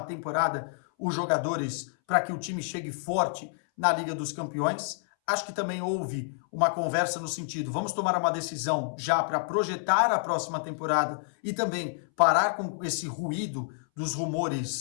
temporada os jogadores para que o time chegue forte na Liga dos Campeões. Acho que também houve uma conversa no sentido, vamos tomar uma decisão já para projetar a próxima temporada e também parar com esse ruído dos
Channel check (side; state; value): right; silent; 59 dB below the other